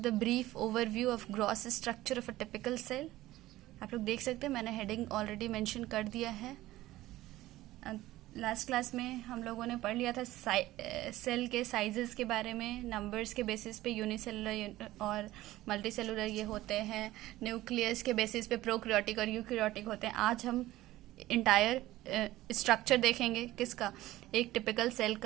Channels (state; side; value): quieter; left; 16.4 dB